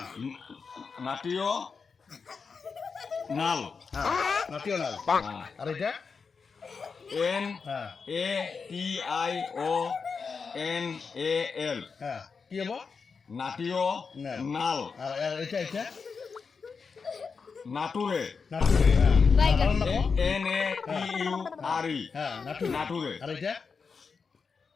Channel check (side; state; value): right; quieter; 5.3 dB